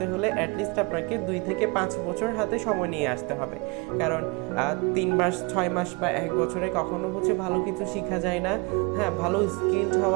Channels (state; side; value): quieter; left; 28.7 dB